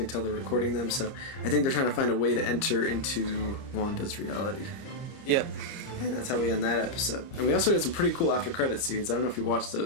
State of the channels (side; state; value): right; late; 30 ms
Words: tell they're recording them. So I think they're trying to find a way to enter into Wanda's reality. Yep. And that's how we end that episode. And we also got some pretty cool after credit scenes. I don't know if you watched